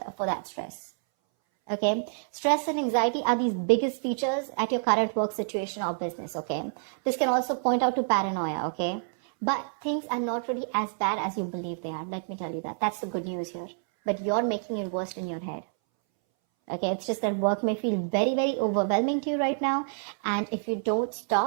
that stress. Okay, stress and anxiety are these biggest features at your current work situation or business, okay? This can also point out to paranoia, okay? But things are not really as bad as you believe they are. Let me tell you that. That's the good news here. But you're making it worse in your head. Okay, it's just that work may feel very, very overwhelming to you right now. And if you don't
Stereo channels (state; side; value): silent; left; 59 dB below the other